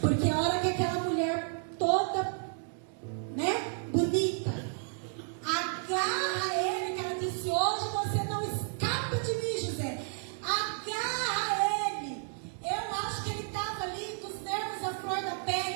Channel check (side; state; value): left; silent; 57 dB below the other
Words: Porque a hora que aquela mulher toda, bonita, agarra ele, que ela disse: hoje você não escapa de mim, José. Agarra ele. Eu acho que ele estava ali com os nervos à flor da